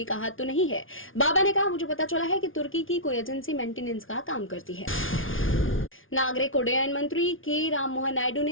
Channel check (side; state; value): right; late; 0.58 ms